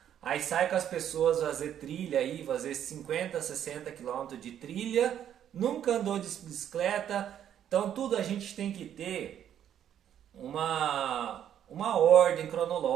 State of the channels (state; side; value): quieter; left; 10.0 dB